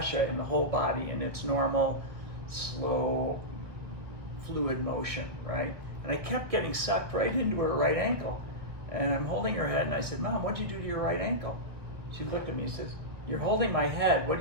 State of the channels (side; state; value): left; late; 1.6 ms